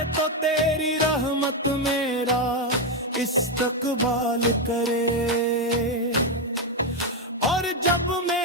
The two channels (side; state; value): both; normal; correlation 0.06